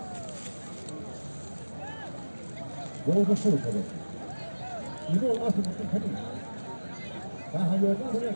Bunu da şöyle tabii. İyi olmazsa bütün tabii. Ben hayırdan sonra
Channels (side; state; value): both; inverted; correlation -1.00